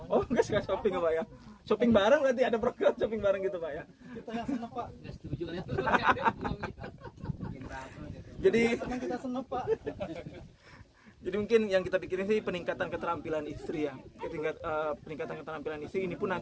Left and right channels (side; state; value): both; identical; correlation 1.00